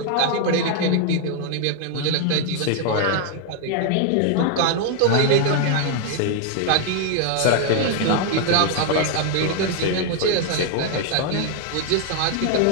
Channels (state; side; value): different; both; correlation 0.00